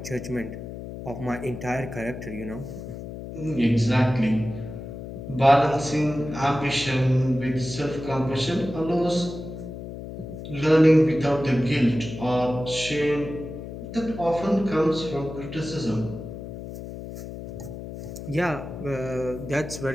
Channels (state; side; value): noise; left; hum, 10 dB below the sound